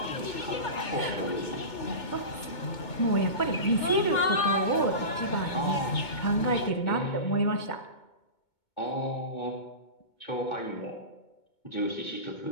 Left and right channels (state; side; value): late; right; 2.2 ms